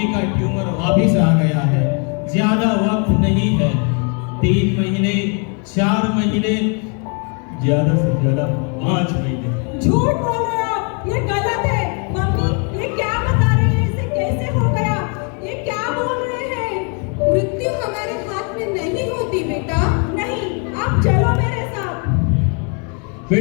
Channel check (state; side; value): quieter; right; 37.8 dB